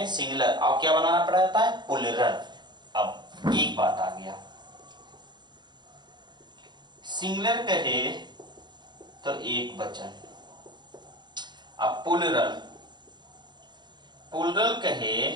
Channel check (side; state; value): left; late; 0.21 ms